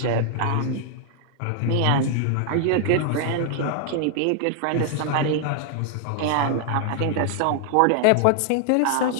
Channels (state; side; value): different; both; correlation 0.00